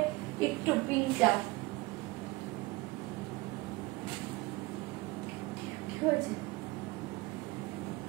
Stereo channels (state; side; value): quieter; left; 22.3 dB